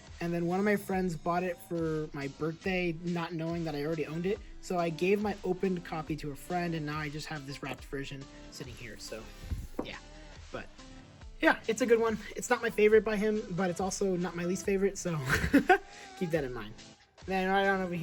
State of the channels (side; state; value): both; identical; correlation 1.00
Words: and then one of my friends bought it for my birthday, not knowing that I already owned it. So I gave my opened copy to a friend, and now I just have this wrapped version sitting here. So yeah, but yeah, it's a good one. It's not my favorite by him, but it's also not my least favorite, so keep that in mind. Then right on over